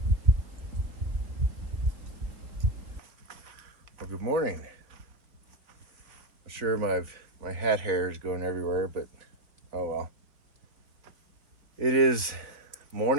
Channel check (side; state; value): left; late; 3.5 ms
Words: morning. I'm sure my hat hair is going everywhere, but oh well. It is